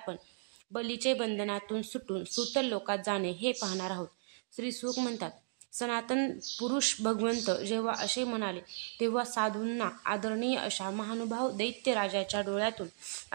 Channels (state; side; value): silent; left; digital silence